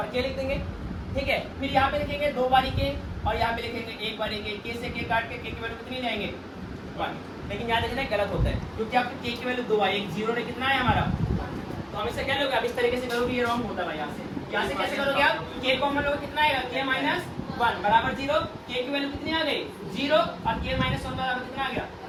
के लिख देंगे, ठीक है। फिर यहाँ पे लिखेंगे 2 बारी के और यहाँ पे लिखेंगे 1 बारी के से के काट के की वैल्यू कितनी जाएंगे 1। लेकिन याद रखना गलत होता है क्योंकि आपके के की वैल्यू 2 आई, एक 0 ने कितना है हमारा, तो हमेशा क्या लोगे आप इस तरीके से करोगे, ये रॉन्ग होता है भाई। यहाँ से कैसे करोगे आप के कॉमन लोगे कितना आएगा के माइनस 1 बराबर 0, के की वैल्यू कितनी आ गई 0 और के माइनस 1 बराबर कितना आ गया,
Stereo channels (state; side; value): identical; both; correlation 1.00